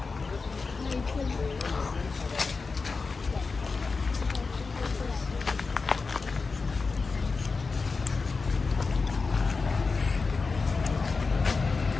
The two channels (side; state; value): right; quieter; 4.4 dB